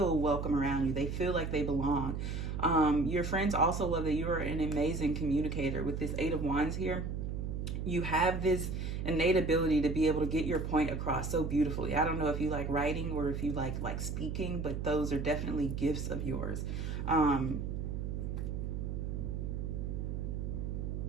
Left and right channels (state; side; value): noise; right; hum, 3 dB below the sound